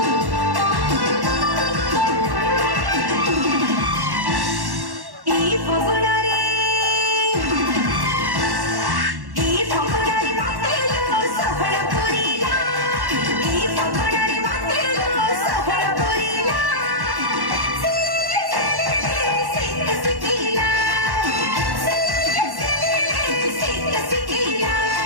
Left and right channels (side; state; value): left; late; 1.1 ms